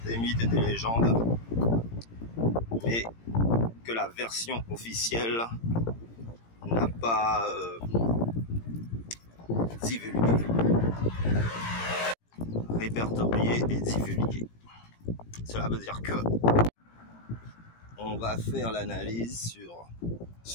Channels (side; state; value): right; late; 17 ms